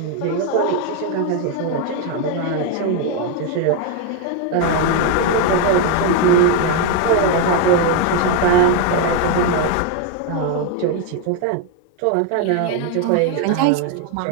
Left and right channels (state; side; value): different; both; correlation 0.01